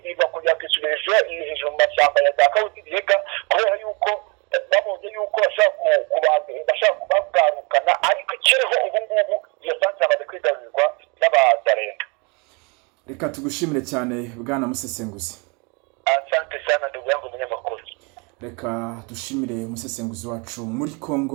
kugira ngo isubirije hejuru mu mashyamba ya za Kawuzi-Biega, kubera yuko babonye yuko bashaka kubagarukana, ariko ikiriho ubu ngubu iyo centre amaze kwigarurirwa n'abazarenda. Reka tugushimire cyane bwana musesenguzi. Asante sana ndugu yangu munyamakuru. Reka dushimire umusesenguzi wacu muri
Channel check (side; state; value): left; quieter; 30.8 dB